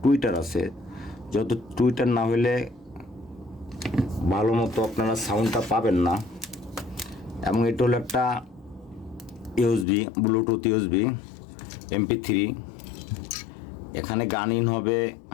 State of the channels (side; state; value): right; drops out; at 9.9 s